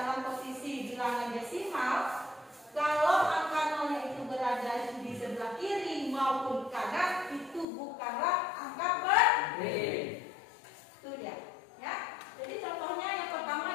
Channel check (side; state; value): right; drops out; at 7.7 s